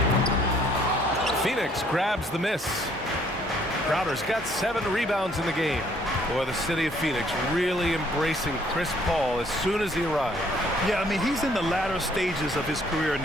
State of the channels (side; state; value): both; normal; correlation 0.63